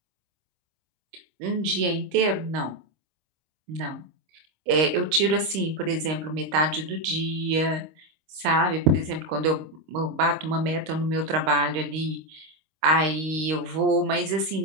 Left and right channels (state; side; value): late; left; 26 ms